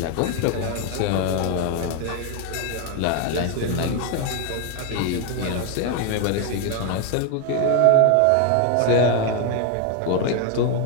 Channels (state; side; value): different; both; correlation 0.01